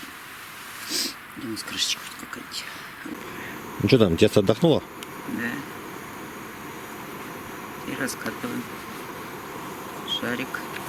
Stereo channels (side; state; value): both; identical; correlation 1.00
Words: Где у нас крышечка какая-нибудь? Ну что там, тесто отдохнуло? Да. И раскатываем шарик.